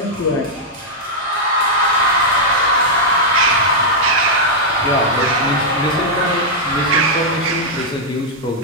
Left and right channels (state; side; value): normal; both; correlation -0.05